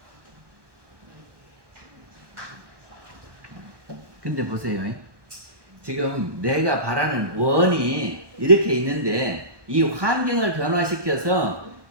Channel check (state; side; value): late; left; 1.2 ms